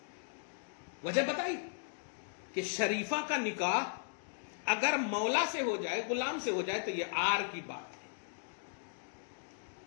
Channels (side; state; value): right; silent; digital silence